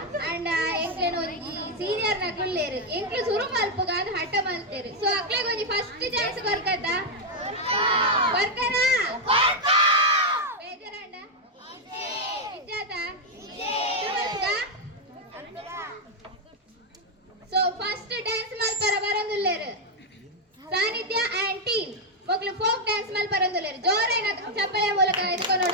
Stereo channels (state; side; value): normal; both; correlation 0.01